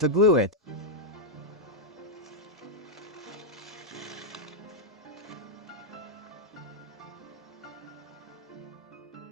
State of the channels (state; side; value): normal; both; correlation -0.03